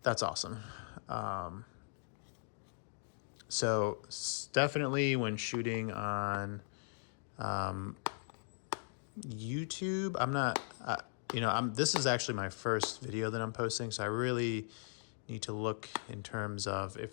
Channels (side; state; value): right; silent; digital silence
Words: awesome. So definitely when shooting on YouTube, I'm not, this is actually my first video that I'm posting, so I really need to look in terms of